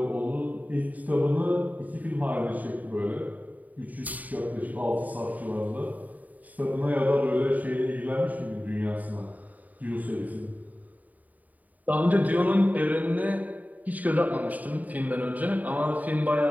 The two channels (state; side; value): late; left; 0.076 ms